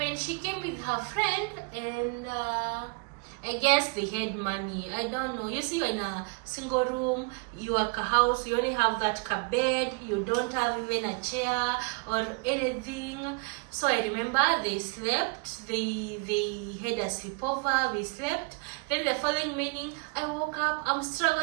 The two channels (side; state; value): left; quieter; 35.0 dB